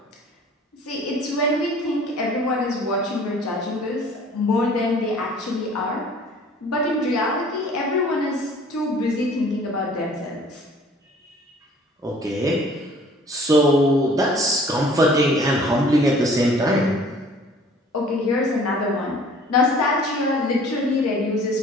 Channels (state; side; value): normal; both; correlation 0.51